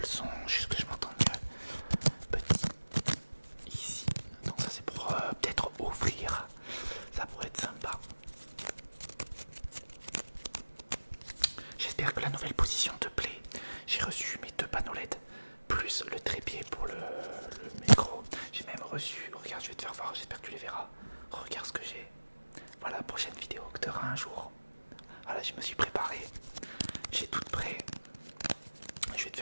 son, juste que je m'entende mieux. Petit. Ici. Donc ça c'est pour peut-être ouvrir. Ça pourrait être sympa. J'espère que la nouvelle position te plaît. J'ai reçu mes 2 panneaux LED plus le trépied pour le micro. J'ai même reçu, regarde, je vais te faire voir, j'espère que tu les verras. Regarde ce que j'ai. Voilà la prochaine vidéo que tu auras un jour. Voilà, je me suis préparé. J'ai tout prêt. Je vais te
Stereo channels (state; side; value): inverted; both; correlation -1.00